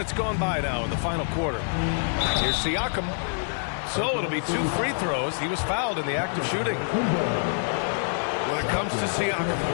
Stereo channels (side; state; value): right; silent; digital silence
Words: gone by now in the final quarter. Here's Siakam. So it'll be 2 free throws. He was fouled in the act of shooting. When it comes to Siakam,